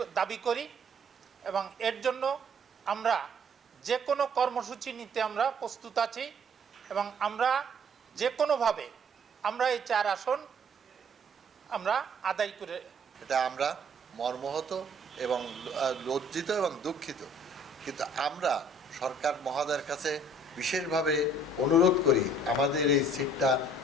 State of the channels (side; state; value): both; normal; correlation 0.58